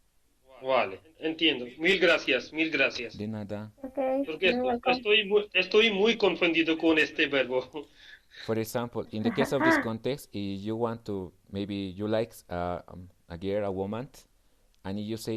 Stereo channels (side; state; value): both; identical; correlation 1.00